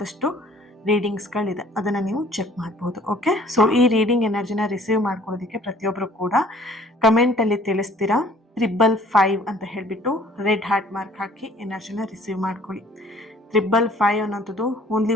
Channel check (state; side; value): normal; both; correlation 0.55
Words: ರೀಡಿಂಗ್ಸ್ಗಳಿದೆ, ಅದನ್ನು ನೀವು ಚೆಕ್ ಮಾಡ್ಬೋದು, ಓಕೆ. ಸೊ ಈ ರೀಡಿಂಗ್ ಎನರ್ಜಿನ ರಿಸೀವ್ ಮಾಡ್ಕೊಳ್ಳೋದಕ್ಕೆ ಪ್ರತಿಯೊಬ್ಬರು ಕೂಡ ಕಮೆಂಟಲ್ಲಿ ತಿಳಿಸ್ತೀರಾ 555 ಅಂತ ಹೇಳಿಬಿಟ್ಟು ರೆಡ್ ಹಾರ್ಟ್ ಮಾರ್ಕ್ ಹಾಕಿ ಎನರ್ಜಿನ ರಿಸೀವ್ ಮಾಡ್ಕೊಳ್ಳಿ. 555 ಅನ್ನೋಂಥದ್ದು ಓನ್ಲಿ